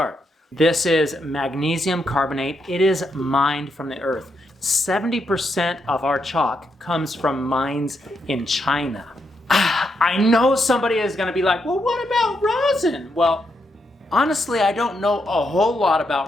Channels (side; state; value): both; normal; correlation 0.80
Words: This is magnesium carbonate. It is mined from the earth. 70% of our chalk comes from mines in China. I know somebody is going to be like, well, what about rosin? Well, honestly, I don't know a whole lot